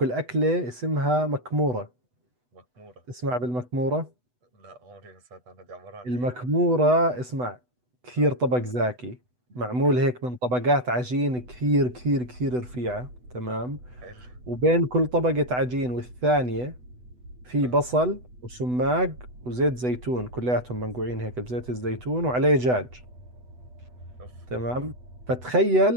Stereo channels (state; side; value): late; left; 8.0 ms